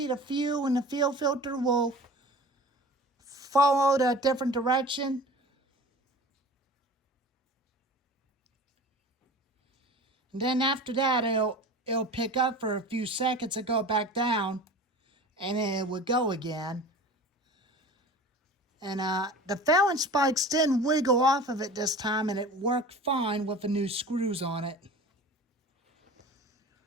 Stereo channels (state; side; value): normal; both; correlation 0.38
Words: the fuel and the fuel filter will follow a different direction. And then after that, it'll pick up for a few seconds and go back down, and then it would go again. And the Fallon spikes didn't wiggle off of it this time, and it worked fine with the new screws on it.